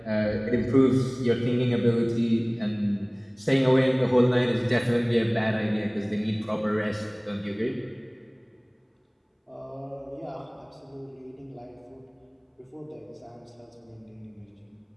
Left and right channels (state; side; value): identical; both; correlation 1.00